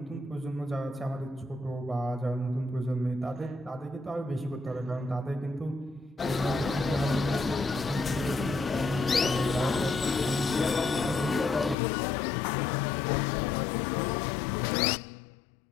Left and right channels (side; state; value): right; drops out; at 11.8 s